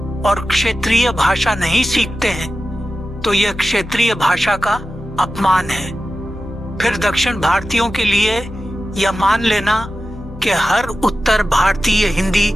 और क्षेत्रीय भाषा नहीं सीखते हैं तो यह क्षेत्रीय भाषा का अपमान है। फिर दक्षिण भारतीयों के लिए यह मान लेना कि हर उत्तर भारतीय हिंदी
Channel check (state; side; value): normal; both; correlation 0.94